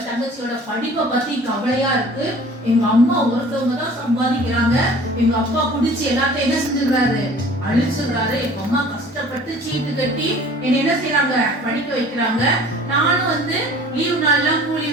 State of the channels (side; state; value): both; normal; correlation 0.47